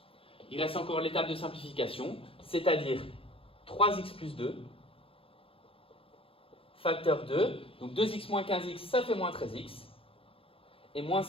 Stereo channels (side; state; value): right; late; 0.27 ms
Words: Il reste encore l'étape de simplification, c'est-à-dire 3x plus 2, facteur 2, donc 2x moins 15x, ça fait moins 13x, et moins